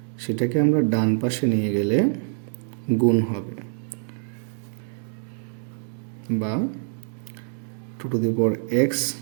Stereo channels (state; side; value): silent; left; digital silence